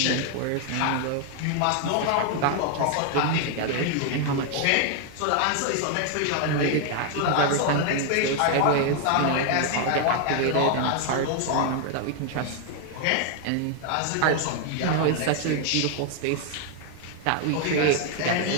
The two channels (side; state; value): both; different; correlation 0.00